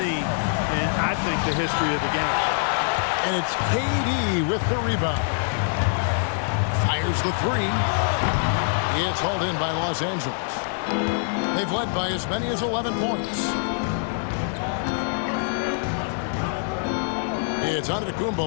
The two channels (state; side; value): silent; right; 59 dB below the other